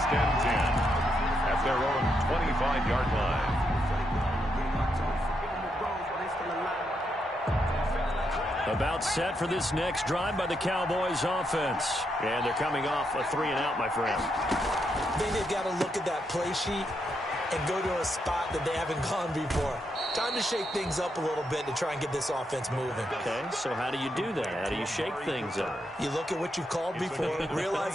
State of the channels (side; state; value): both; normal; correlation 0.80